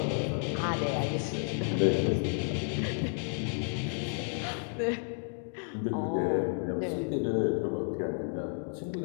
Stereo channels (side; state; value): right; silent; 57 dB below the other